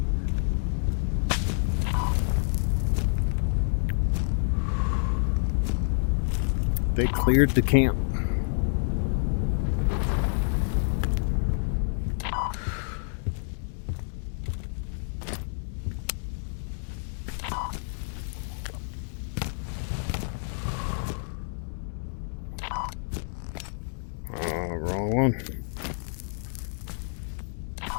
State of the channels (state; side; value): silent; right; 59 dB below the other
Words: They cleared the camp. Wrong one.